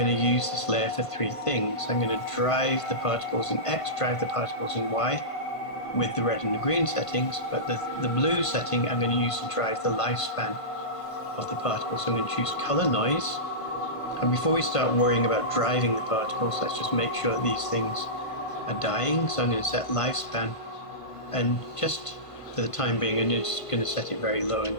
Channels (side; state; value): right; late; 1.5 ms